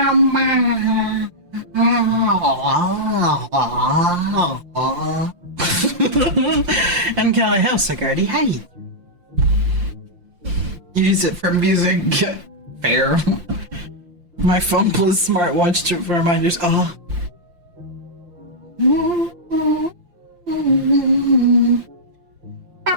And Callie House, Sigardi, hey. Use it for music. Fair. My phone plus smartwatch to for reminders. Oh.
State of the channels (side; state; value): left; late; 5.7 ms